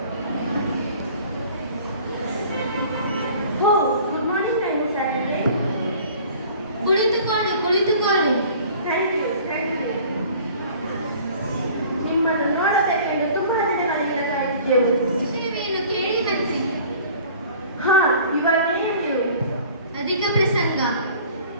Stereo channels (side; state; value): both; inverted; correlation -0.48